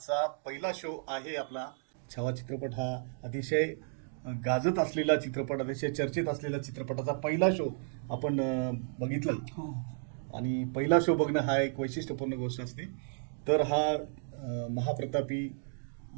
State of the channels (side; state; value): left; silent; digital silence